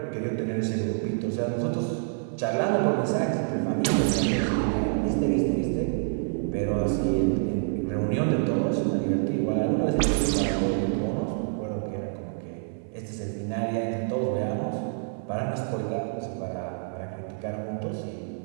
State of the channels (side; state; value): left; silent; digital silence